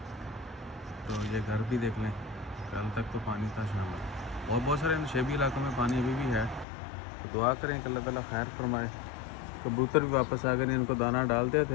तो ये घर भी देख लें, कल तक तो पानी था शाम में। और बहुत सारे नशेबी इलाकों में पानी अभी भी है। तो दुआ करें कि अल्लाह ताला खैर फरमाए। कबूतर भी वापस आ गए, इनको दाना डालते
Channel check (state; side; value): drops out; right; at 6.7 s